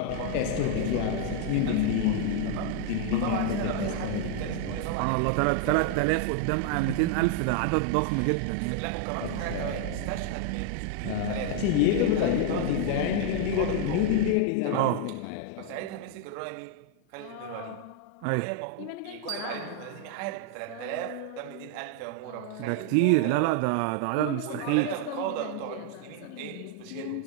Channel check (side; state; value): both; different; correlation 0.00